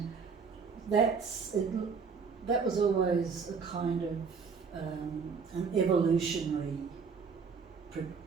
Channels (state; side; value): quieter; left; 5.4 dB